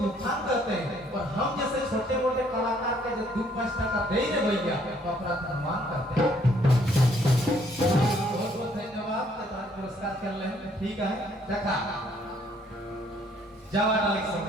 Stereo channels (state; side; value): normal; both; correlation 0.65